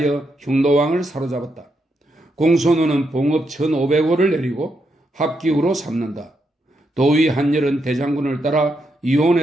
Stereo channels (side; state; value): both; normal; correlation 0.81